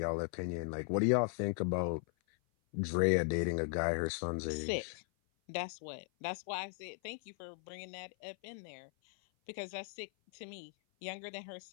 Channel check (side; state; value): right; silent; 52 dB below the other